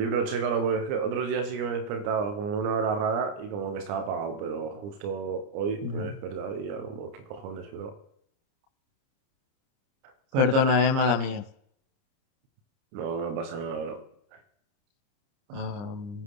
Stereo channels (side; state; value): left; late; 30 ms